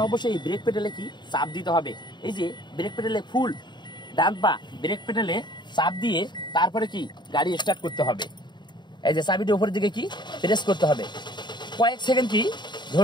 অবশ্যই ব্রেক পেডেলে কি চাপ দিতে হবে। এই যে ব্রেক পেডেলে ফুল ডান পা ব্রেক পেডেলে চাপ দিয়ে তারপরে কি গাড়ি স্টার্ট করতে হবে। এই যে চাবিটি উপরের দিকে কি প্রেস করতে হবে, কয়েক সেকেন্ড কি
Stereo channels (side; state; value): right; late; 0.22 ms